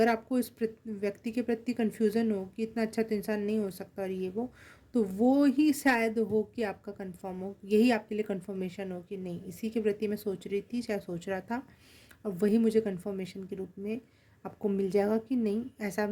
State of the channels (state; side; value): identical; both; correlation 1.00